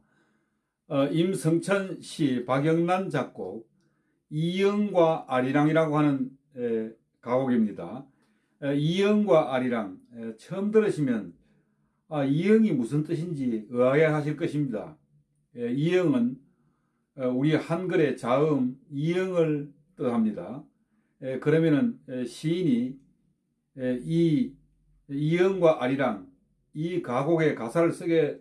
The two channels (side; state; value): both; identical; correlation 1.00